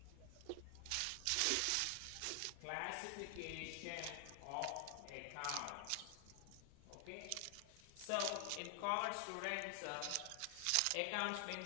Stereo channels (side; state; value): both; different; correlation 0.00